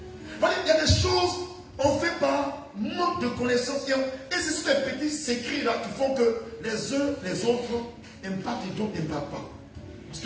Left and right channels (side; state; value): both; identical; correlation 1.00